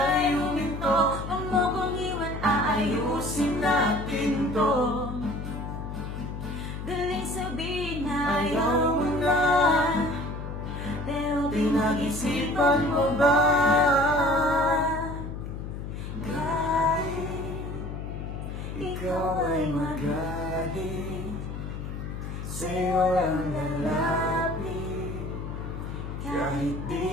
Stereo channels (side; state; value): left; noise; hum, 7 dB below the sound